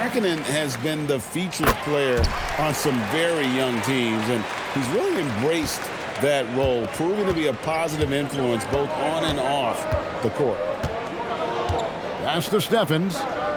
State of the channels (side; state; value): both; identical; correlation 1.00